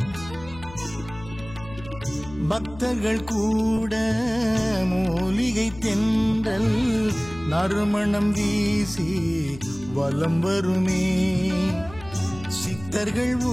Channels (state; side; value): noise; left; hum, 17 dB below the sound